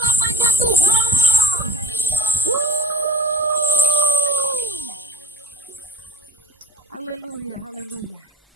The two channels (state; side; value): normal; both; correlation 0.45